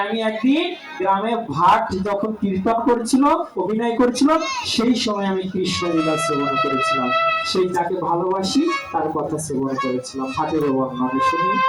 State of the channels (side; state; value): both; identical; correlation 1.00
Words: আমি একদিন গ্রামে ভাট যখন কীর্তন করছিল, অভিনয় করছিল, সেই সময় আমি কৃষ্ণ লীলা শ্রবণ করেছিলাম। সেই যাকে ভালোবাসি তার কথা শ্রবণ করেছিলাম, ভাটের বর্ণনা শুনি